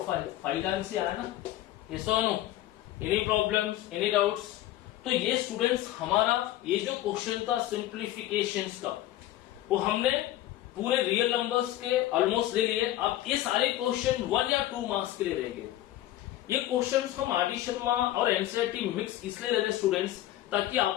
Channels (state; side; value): quieter; right; 14.3 dB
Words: 5 टाइम्स से आया ना? यस और no? Any problems, any doubts? तो ये स्टूडेंट्स हमारा ये जो क्वेश्चन था सिंप्लीफिकेशंस का, वो हमने पूरे रियल नंबर्स के ऑलमोस्ट ले लिए। अब ये सारे क्वेश्चन 1 या 2 मार्क्स के लिए रह गए। ये क्वेश्चंस हम आर डी शर्मा और एनसीईआरटी मिक्स इसलिए ले रहे स्टूडेंट्स ताकि